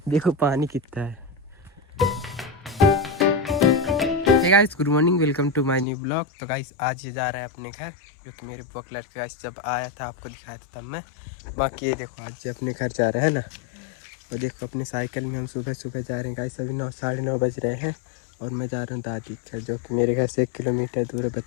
देखो पानी कितना है। Hey guys, good morning, welcome to my new blog. तो गाइस आज ये जा रहा है अपने घर, जो कि मेरे ब्लॉग लड़के गाइस जब आया था आपको दिखाया था तब मैं। बाकी ये देखो आज अपने घर जा रहा है ना। और देखो अपने साइकिल में हम सुबह सुबह जा रहे हैं गाइस। अभी 9 साढ़े 9 बज रहे हैं और मैं जा रहा हूँ दादी घर, जो कि मेरे घर से 1 किलोमीटर दूर है,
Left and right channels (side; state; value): right; drops out; at 5.9 s